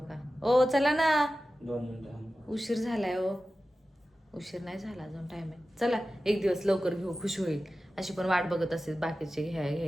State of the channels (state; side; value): normal; both; correlation 0.94